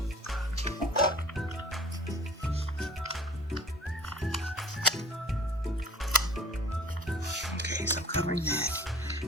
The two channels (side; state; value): both; normal; correlation 0.47